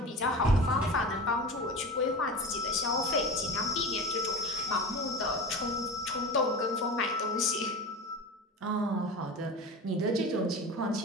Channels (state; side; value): normal; both; correlation 0.30